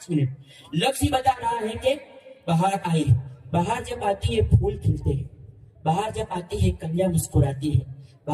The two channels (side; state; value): both; identical; correlation 1.00